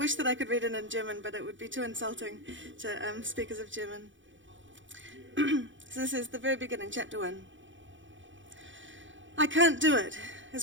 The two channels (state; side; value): late; left; 0.56 ms